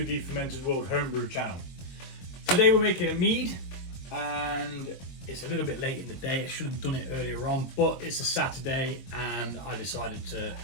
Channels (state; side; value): late; right; 22 ms